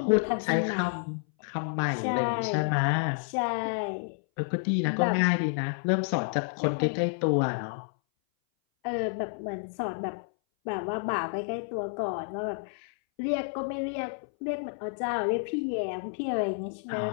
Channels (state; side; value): silent; right; 58 dB below the other